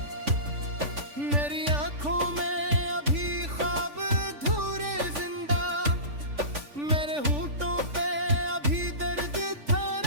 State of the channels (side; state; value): left; late; 3.5 ms